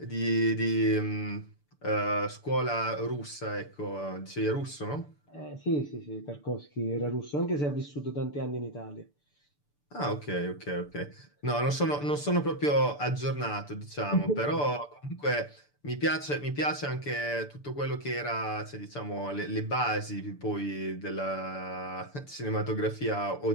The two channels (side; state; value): right; late; 6.9 ms